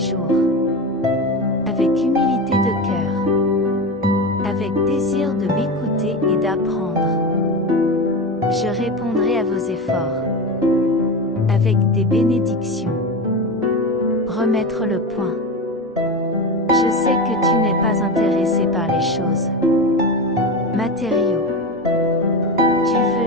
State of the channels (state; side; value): normal; both; correlation 0.22